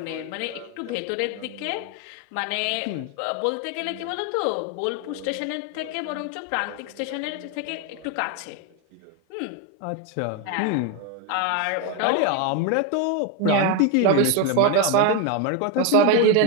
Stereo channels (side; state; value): both; different; correlation 0.02